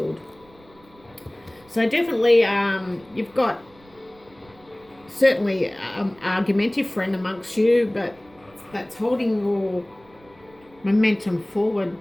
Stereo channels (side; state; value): right; noise; rumble, 28 dB below the sound